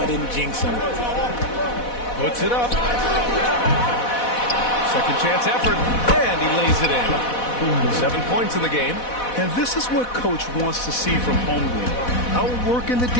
didn't jinx him. Puts it up. Second chance effort. And he lays it in. 7 points in the game. And this is what Coach wants to see from Holmgren. Outworking the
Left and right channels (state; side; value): late; right; 4.1 ms